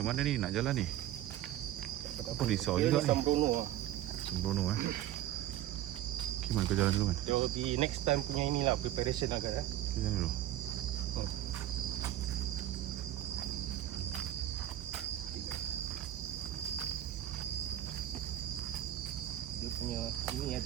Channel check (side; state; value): left; quieter; 12.9 dB